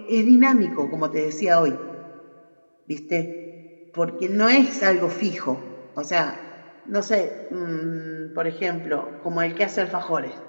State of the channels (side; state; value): both; inverted; correlation -1.00